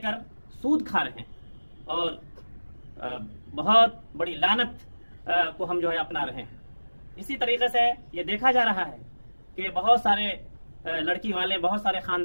सूद खा रहे हैं और बहुत बड़ी लानत को हम जो है अपना रहे हैं। इसी तरीके से ये देखा जा रहा है कि बहुत सारे लड़की वाले, बहुत सारे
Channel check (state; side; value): inverted; both; correlation -1.00